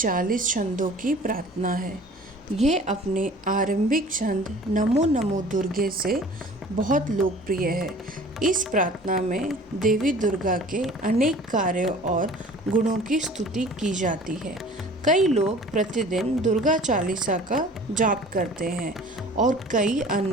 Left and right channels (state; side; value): normal; both; correlation 0.46